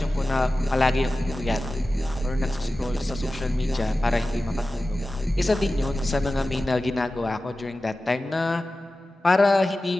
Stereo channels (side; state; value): both; normal; correlation 0.95